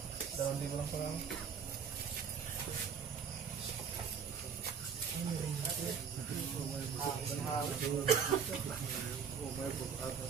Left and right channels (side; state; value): left; quieter; 6.7 dB